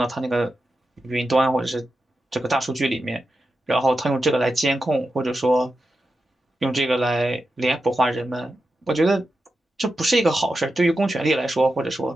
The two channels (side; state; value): both; normal; correlation 0.89